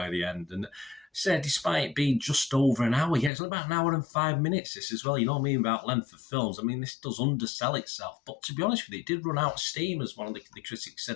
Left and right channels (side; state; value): right; drops out; at 3.3 s